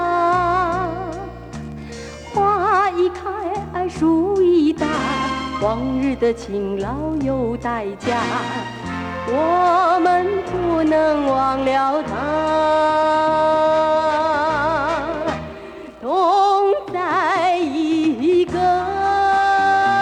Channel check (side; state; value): both; identical; correlation 1.00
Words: 花一开，树一大，往日的勤劳有代价，我们不能忘了他。同在一个